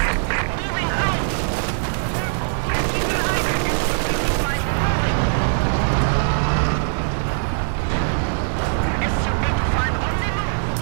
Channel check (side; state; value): left; silent; digital silence